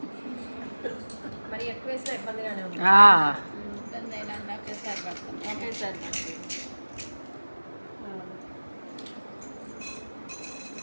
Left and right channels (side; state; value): both; inverted; correlation -1.00